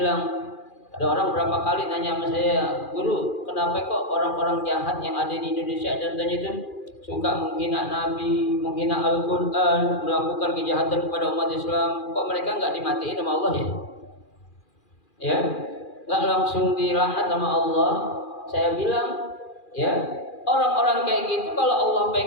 ada orang berapa kali nanya sama saya, guru, kenapa kok orang-orang jahat yang ada di Indonesia contohnya itu suka menghina Nabi, menghina Al-Quran, melakukan kejahatan kepada umat Islam, kok mereka nggak dimatiin sama Allah ya? Ya, nggak langsung dilaknat sama Allah. Saya bilang, ya, orang-orang kayak gitu kalau Allah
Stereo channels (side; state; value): right; late; 2.4 ms